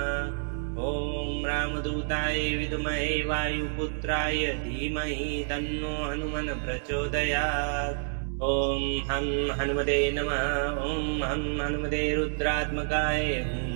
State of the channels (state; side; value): silent; left; digital silence